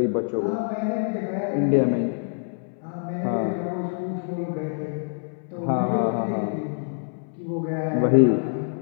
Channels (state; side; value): silent; right; 61 dB below the other